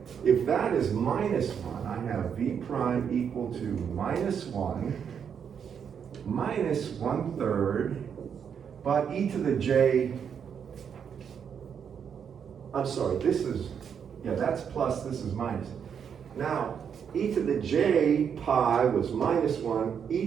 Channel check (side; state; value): left; quieter; 7.5 dB